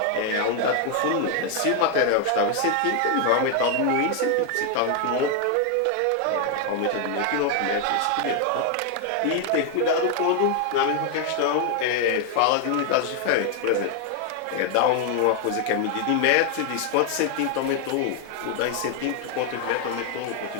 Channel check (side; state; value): both; different; correlation 0.01